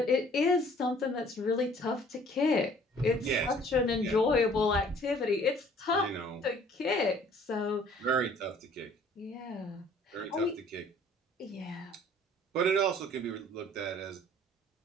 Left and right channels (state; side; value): normal; both; correlation 0.55